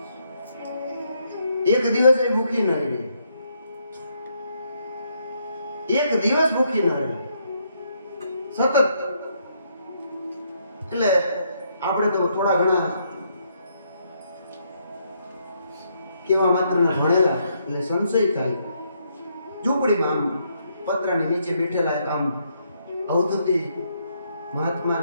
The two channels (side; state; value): both; inverted; correlation -0.74